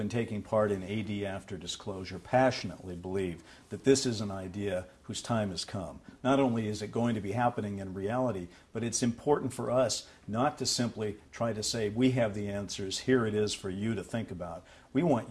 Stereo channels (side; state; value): both; identical; correlation 1.00